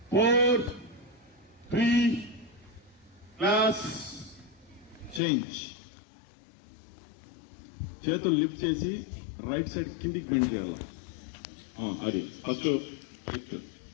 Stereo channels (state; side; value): drops out; right; at 5.2 s